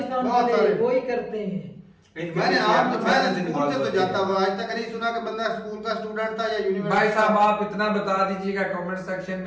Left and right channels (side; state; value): both; identical; correlation 1.00